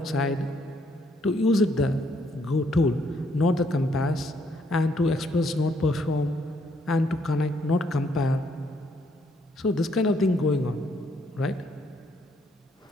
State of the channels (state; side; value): normal; both; correlation 0.70